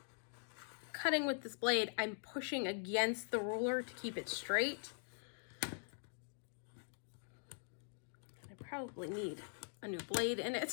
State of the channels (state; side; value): silent; right; digital silence